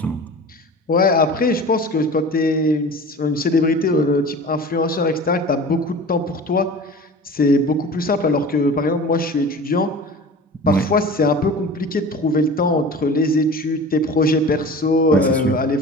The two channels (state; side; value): normal; both; correlation 0.38